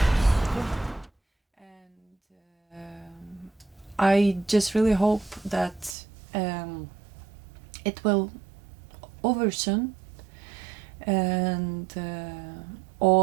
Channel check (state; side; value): drops out; left; at 6.0 s